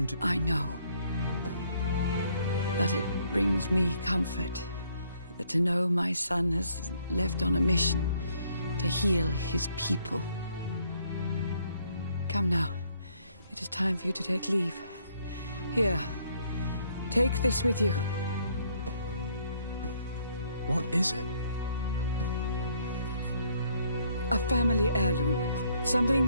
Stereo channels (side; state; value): both; inverted; correlation -0.67